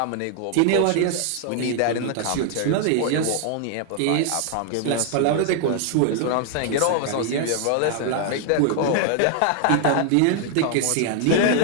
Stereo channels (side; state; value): both; different; correlation 0.00